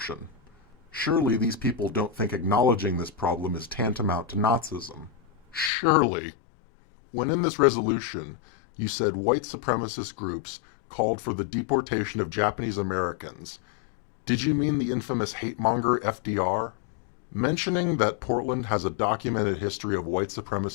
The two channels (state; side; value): drops out; right; at 5.7 s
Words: Surely these people don't think acknowledging this problem is tantamount to Nazism. Surely. When in this resolution you said white supremacist groups called for the deportation of Japanese Americans, did you mean the infamous hate-monger FDR? Mentioning that Portland has a documented history of white